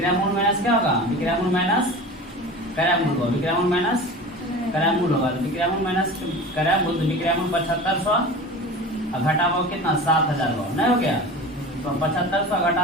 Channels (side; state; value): both; normal; correlation 0.35